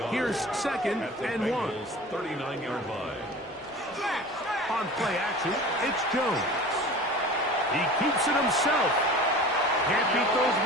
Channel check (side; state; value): both; normal; correlation 0.38